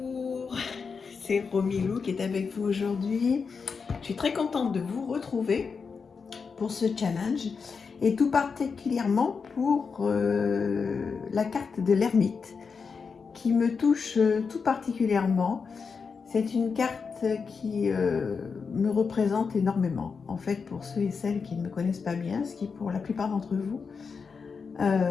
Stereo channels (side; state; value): right; quieter; 5.4 dB